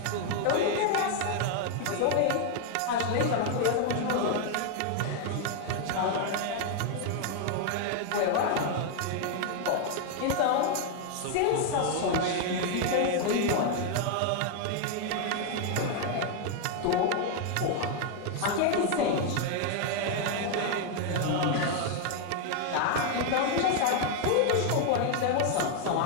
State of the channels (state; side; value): different; both; correlation 0.00